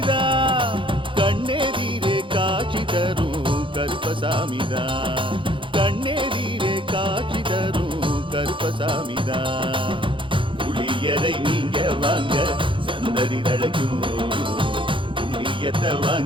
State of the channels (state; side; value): late; left; 0.25 ms